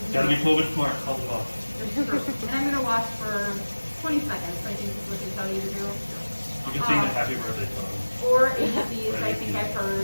Gotta be COVID smart. Help them out. That's true. And I'm gonna wash for 20 seconds. I think is what they tell you to do. You can sing the happy birthday song. Or ABCs, I think I've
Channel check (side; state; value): both; inverted; correlation -1.00